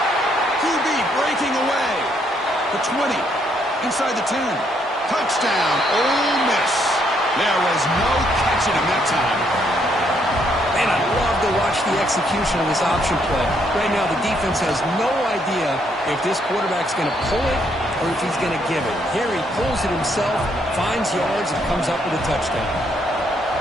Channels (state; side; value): normal; both; correlation 0.72